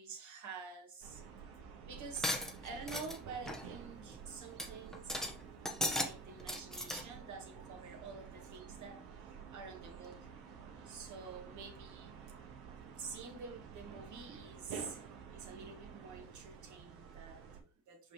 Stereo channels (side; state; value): both; normal; correlation 0.32